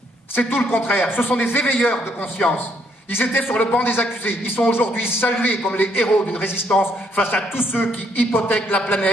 C'est tout le contraire. Ce sont des éveilleurs de conscience. Ils étaient sur le banc des accusés. Ils sont aujourd'hui salués comme les héros d'une résistance face à tous ceux qui hypothèquent la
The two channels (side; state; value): both; normal; correlation 0.70